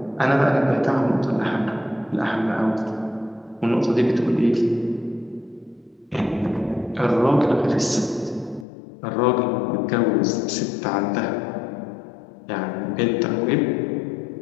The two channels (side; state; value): right; drops out; at 8.7 s